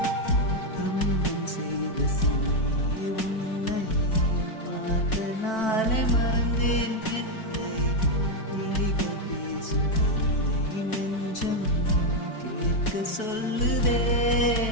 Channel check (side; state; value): right; late; 4.5 ms